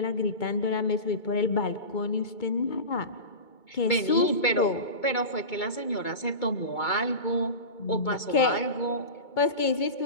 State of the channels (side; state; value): right; late; 2.2 ms